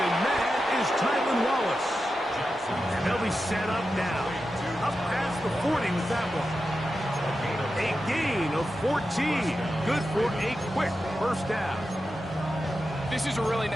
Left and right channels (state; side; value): normal; both; correlation 0.90